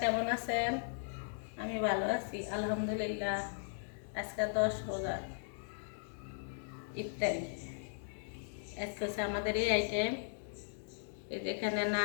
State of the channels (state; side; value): silent; right; digital silence